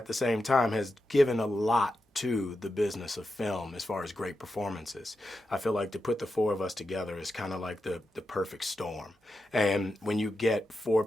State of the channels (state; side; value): normal; both; correlation 0.89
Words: the same time has given a lot to the business of film as far as great performances. I feel like to put the four of us together is kind of like the perfect storm. And when you get four